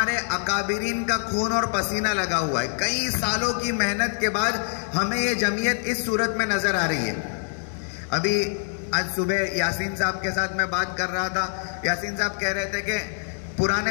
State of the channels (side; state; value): right; silent; digital silence